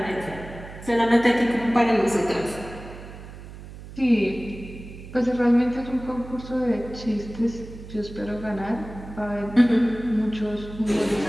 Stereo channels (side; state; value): right; noise; hum, 14 dB below the sound